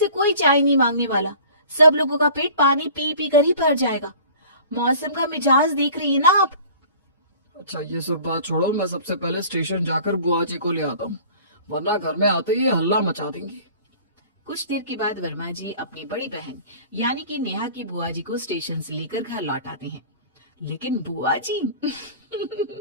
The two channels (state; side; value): inverted; both; correlation -0.46